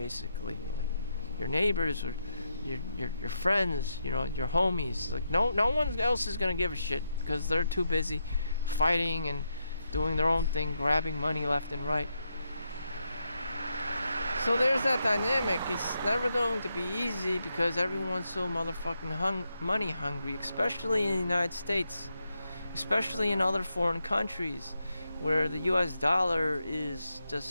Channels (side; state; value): both; inverted; correlation -0.83